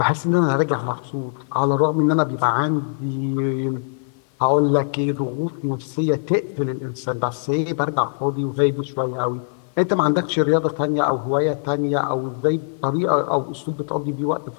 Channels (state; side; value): silent; right; 55 dB below the other